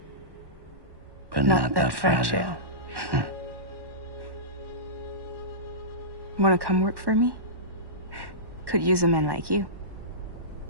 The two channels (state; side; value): late; left; 1.1 ms